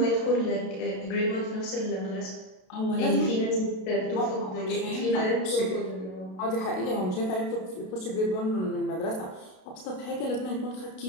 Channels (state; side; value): late; right; 32 ms